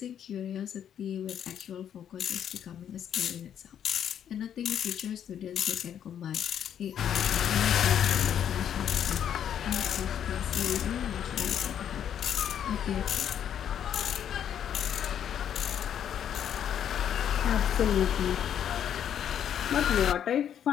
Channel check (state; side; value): quieter; right; 9.4 dB